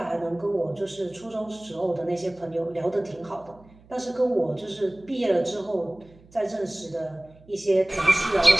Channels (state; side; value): noise; right; hum, 26 dB below the sound